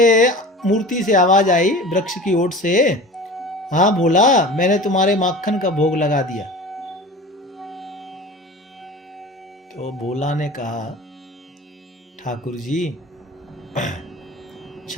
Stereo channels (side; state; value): both; normal; correlation 0.37